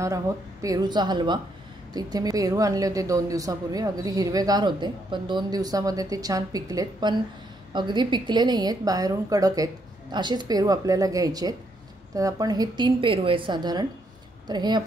आहोत पेरूचा हलवा। तर इथे मी पेरू आणले होते 2 दिवसापूर्वी। अगदी हिरवेगार होते, पण 2 दिवसामध्ये ते छान पिकलेत, पण अगदी पिकले नाही आहेत, बाहेरून कडक आहेत। असेच पेरू आपल्याला घ्यायचे आहेत। तर आपण हे 3 पेरू आहेत साधारण। तर हे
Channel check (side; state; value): both; normal; correlation 0.75